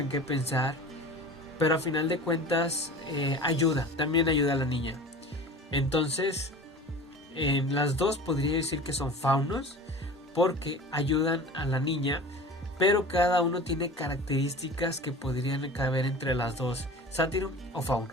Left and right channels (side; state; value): both; normal; correlation 0.38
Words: qué pensar, pero a final de cuentas también ayuda a la niña. Entonces, las dos podría decir que son faunos porque ayudan a la niña, pero cada uno tiene características que podrían caber entre las dos, sátiro o